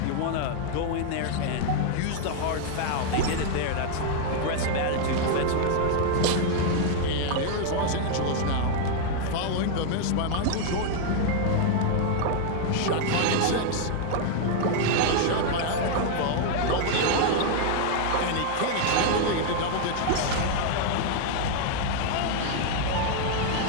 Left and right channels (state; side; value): different; both; correlation 0.00